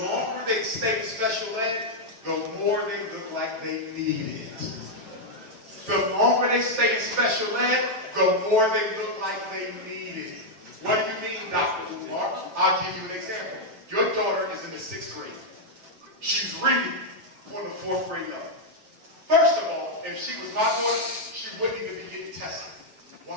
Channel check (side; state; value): left; late; 9.0 ms